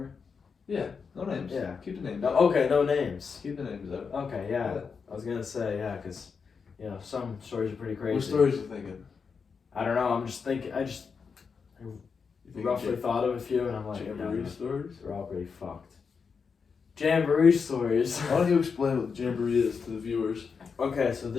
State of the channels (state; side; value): quieter; right; 5.6 dB